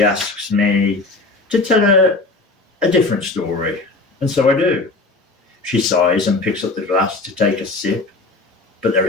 asks me to tell her a different story, and so I do. She sighs and picks up the glass to take a sip, but there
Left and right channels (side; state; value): right; quieter; 3.4 dB